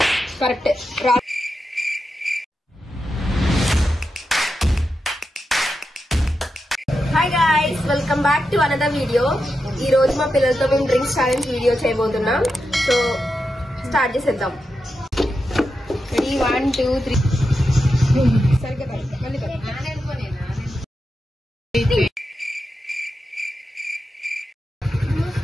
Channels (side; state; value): both; normal; correlation 0.88